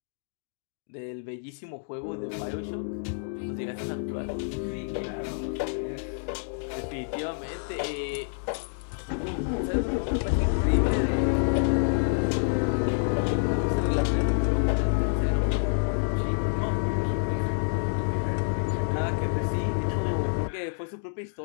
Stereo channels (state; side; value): silent; right; digital silence